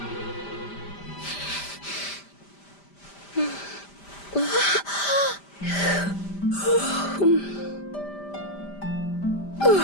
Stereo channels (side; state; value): right; late; 5.0 ms